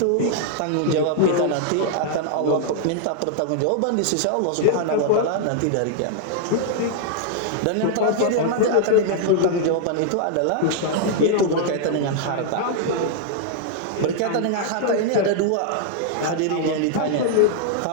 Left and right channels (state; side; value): different; both; correlation -0.01